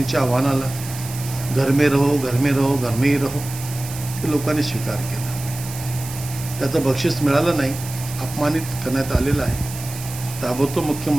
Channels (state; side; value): noise; right; hiss, 12 dB below the sound